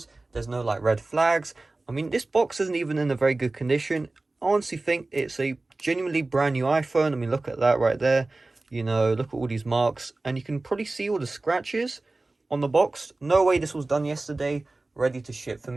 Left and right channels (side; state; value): left; quieter; 3.1 dB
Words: there's no like red flags. I mean, this box isn't even in a very good condition. I honestly think it's a genuinely brand new iPhone. I mean, look at that right there. You know, look at all these marks, and you can probably see all the scratches on the box. No way this was done yesterday, ready to ship for